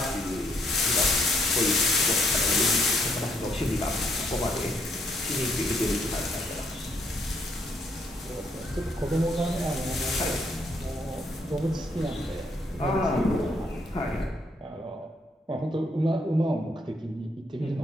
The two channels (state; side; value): normal; both; correlation 0.71